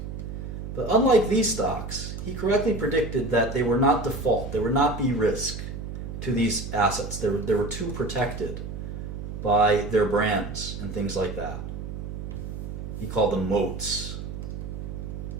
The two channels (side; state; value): right; noise; hum, 7 dB below the sound